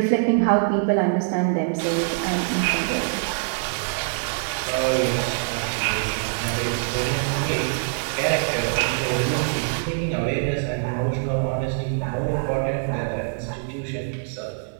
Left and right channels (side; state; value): left; silent; 63 dB below the other